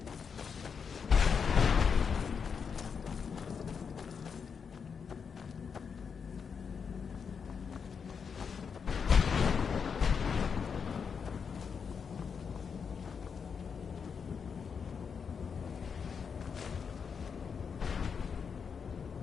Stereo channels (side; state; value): right; quieter; 6.2 dB